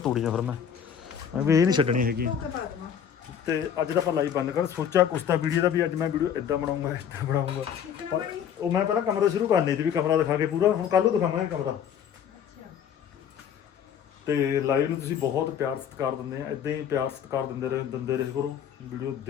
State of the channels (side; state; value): right; quieter; 8.5 dB